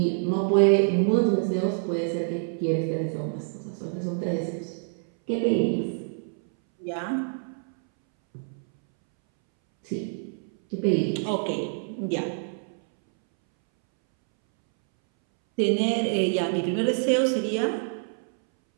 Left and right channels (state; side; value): silent; left; 61 dB below the other